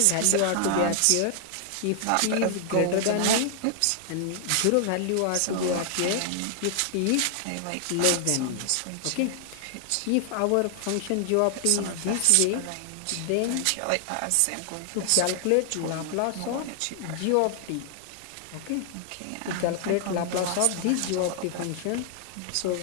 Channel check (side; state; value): both; different; correlation 0.00